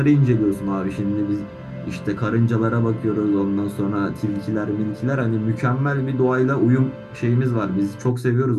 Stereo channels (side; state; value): both; identical; correlation 1.00